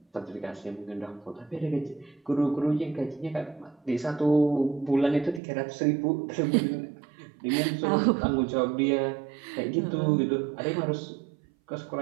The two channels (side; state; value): left; drops out; at 5.4 s